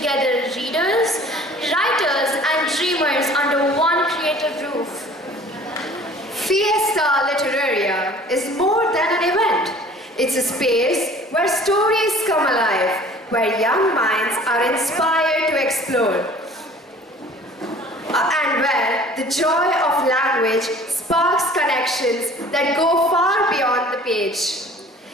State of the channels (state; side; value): normal; both; correlation 0.49